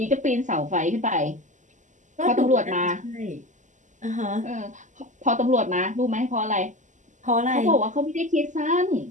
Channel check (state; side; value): late; left; 0.36 ms